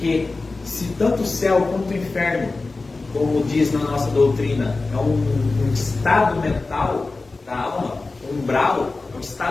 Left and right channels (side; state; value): right; quieter; 3.6 dB